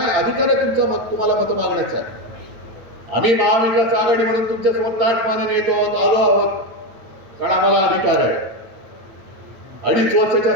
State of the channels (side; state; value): left; late; 9.3 ms